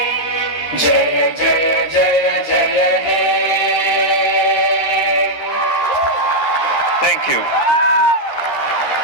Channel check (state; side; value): late; right; 13 ms